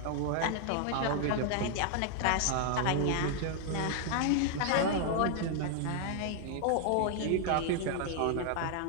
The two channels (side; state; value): both; different; correlation 0.00